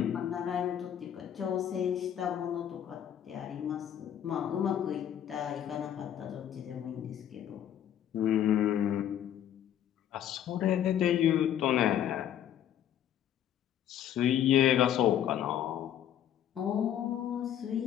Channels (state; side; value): quieter; right; 10.4 dB